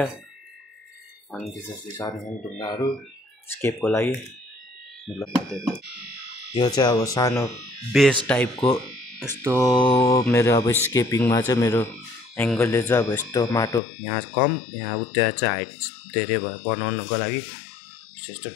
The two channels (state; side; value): drops out; right; at 13.8 s